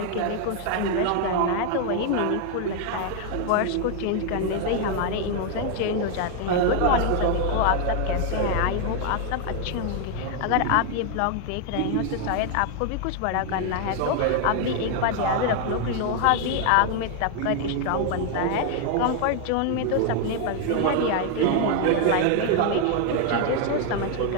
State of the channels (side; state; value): both; different; correlation 0.00